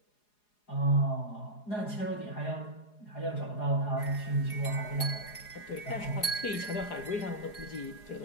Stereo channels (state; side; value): late; right; 4.8 ms